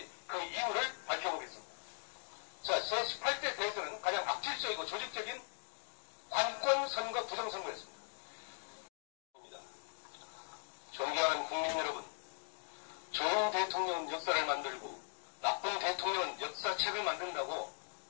그 이유를 밝혀보겠습니다. 자, 제18대 대선은 가장 악질적이고 조직적인 관권 선거 부정선거였습니다. 존경하는 국민 여러분, 좋은 대통령은 역사를 만들고 나쁜 대통령은 역사책을 만든다고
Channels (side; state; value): right; silent; 51 dB below the other